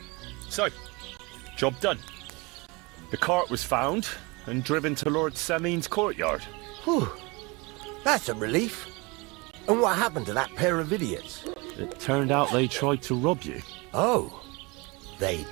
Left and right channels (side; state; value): left; quieter; 26.5 dB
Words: So, job done. The cart was found and driven to Lord Semin's courtyard. Whew. That's a relief. And what happened to that pair of idiots? It turned out they tried to rob you. Oh. They